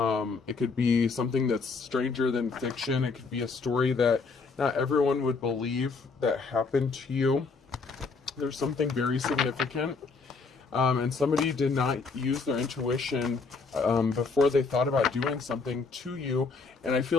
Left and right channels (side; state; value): right; quieter; 4.4 dB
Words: could be something that's stranger than fiction. It could be a story that not everyone would believe that happened to you. There's something very significant. And somebody did not use their intuition before they thought about doing something to you. And I